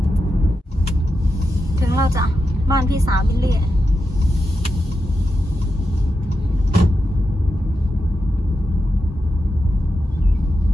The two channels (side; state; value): both; normal; correlation 0.88